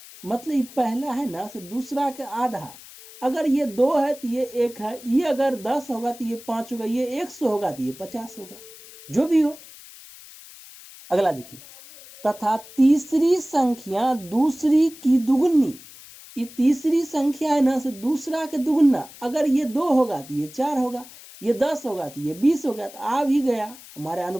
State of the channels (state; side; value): noise; left; hiss, 19 dB below the sound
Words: मतलब ये पहला है ना, से दूसरा के आधा, अगर ये 2 है तो ये 1 है, ये अगर 10 होगा तो ये 5 होगा, ये 100 होगा तो ये 50 होगा, जो भी हो। अगला देखिए, तथा तीसरी संख्या दूसरी की दुगुनी, ये तीसरी संख्या है ना, से दूसरा के दुगुना, अगर ये 2 होगा तो ये 4 होगा, ये 10 होगा तो ये 20 होगा, तो आ भी गया, हमारे